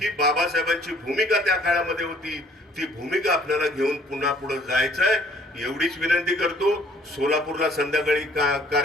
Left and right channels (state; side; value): normal; both; correlation 0.59